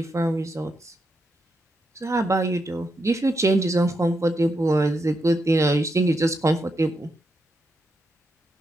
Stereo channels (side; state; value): both; normal; correlation 0.83